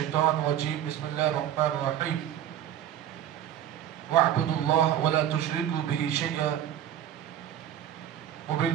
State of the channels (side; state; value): left; quieter; 10.7 dB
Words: الرجيم. بسم الله الرحمن الرحيم. واعبدوا الله ولا تشركوا به شيئا